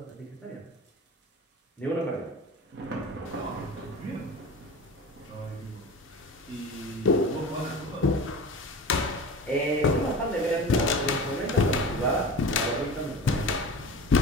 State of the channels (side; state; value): both; normal; correlation 0.34